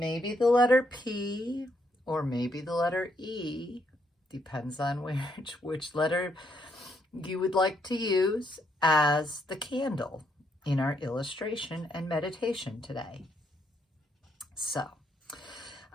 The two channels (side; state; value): both; normal; correlation 0.75